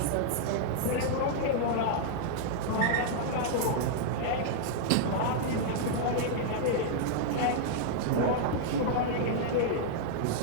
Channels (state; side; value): different; both; correlation -0.01